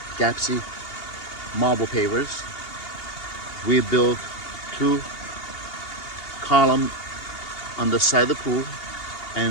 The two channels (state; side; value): late; right; 2.8 ms